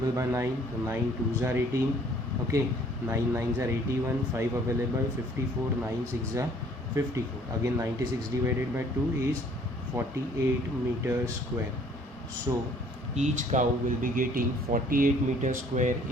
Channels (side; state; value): both; normal; correlation 0.58